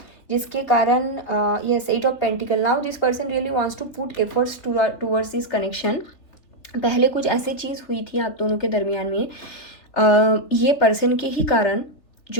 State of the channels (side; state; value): right; late; 3.5 ms